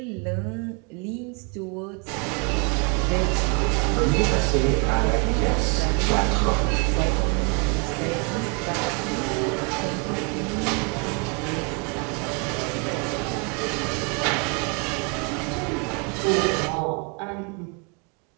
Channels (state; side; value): quieter; left; 34.5 dB